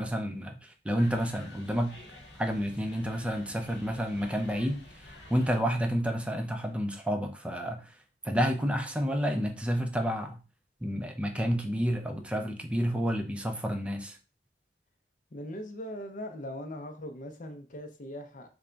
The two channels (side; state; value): both; normal; correlation 0.86